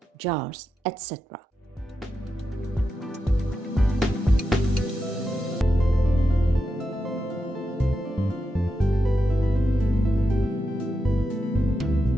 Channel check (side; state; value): both; normal; correlation 0.88